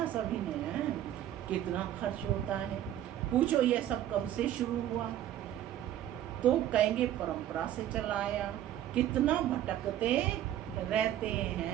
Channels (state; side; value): quieter; left; 11.9 dB